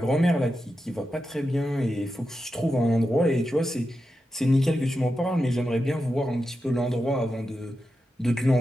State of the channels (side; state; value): both; normal; correlation 0.89